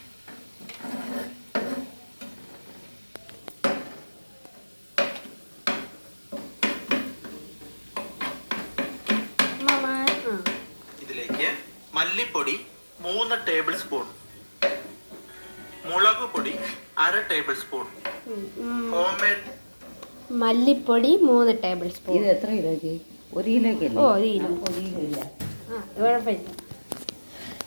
ഇതിലേക്ക് മല്ലിപ്പൊടി 3 ടേബിൾ സ്പൂൺ, മുളക് പൊടി 1/2 ടേബിൾ സ്പൂൺ, മല്ലിപ്പൊടി 3 ടേബിൾ സ്പൂൺ. ഇത് എത്ര കിലോയ്ക്ക്? 1 കിലോയ്ക്ക്? ഓ 1 കിലോ. 1 കിലോ ഇല്ല, കുഴപ്പമില്ല.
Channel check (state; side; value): inverted; both; correlation -1.00